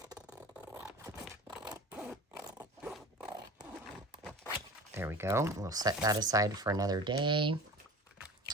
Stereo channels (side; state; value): both; normal; correlation 0.36